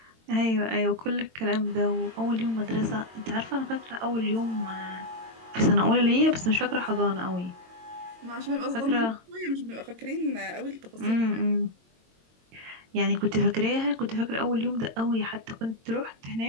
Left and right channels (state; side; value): late; left; 22 ms